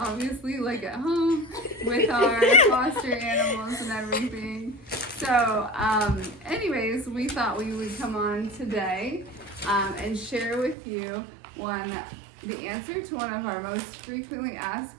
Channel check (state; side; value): drops out; left; at 10.8 s